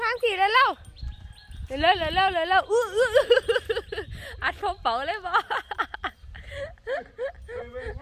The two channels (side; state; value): both; identical; correlation 1.00